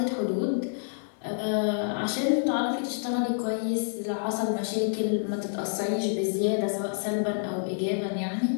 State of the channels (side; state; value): right; silent; digital silence